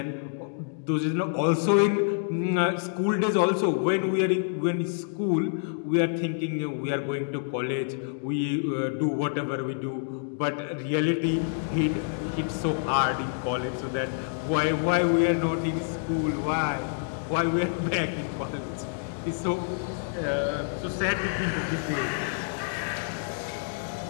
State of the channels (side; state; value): right; silent; digital silence